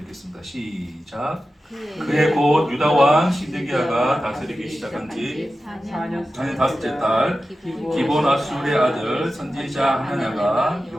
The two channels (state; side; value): normal; both; correlation 0.93